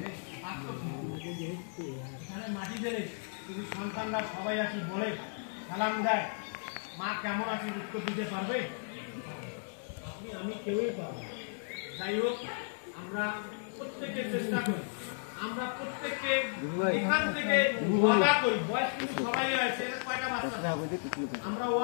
এখানে মাটি দেবে, যদি সন্তানরা সবাই আসি বলে সালাম দেয়, মা কেমন আছে উত্তর দিতে পারবে? আমি কেউই পারবো। যাই হোক, আমরা প্রত্যেকে চেষ্টা করি, আমরা প্রত্যেককে এখান থেকে ওয়াদা করি, বয়স কিন্তু সবাই আছে, কয়টা বাচ্চা, আমরা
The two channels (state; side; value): silent; right; digital silence